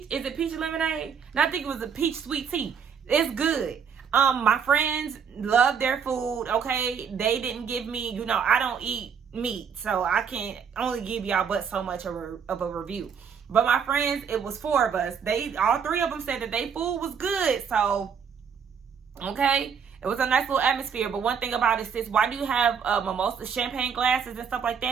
Is it peach lemonade? No, I think it was a peach sweet tea. It's good. My friends love their food, okay? They didn't give me, you know, I don't eat meat, so I can only give y'all but so much of a review. But my friends, it was 4 of us. All 3 of them said that their food was good, so, okay? It was a nice little atmosphere. But one thing about it, sis, why do you have mimosa champagne glasses and stuff like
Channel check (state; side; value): quieter; left; 6.9 dB